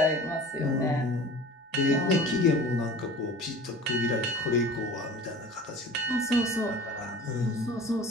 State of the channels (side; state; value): both; normal; correlation 0.41